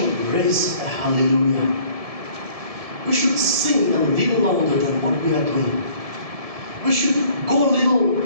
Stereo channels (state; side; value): late; left; 1.7 ms